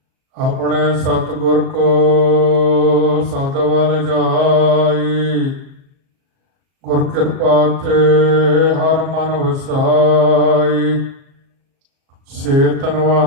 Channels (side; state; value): left; late; 37 ms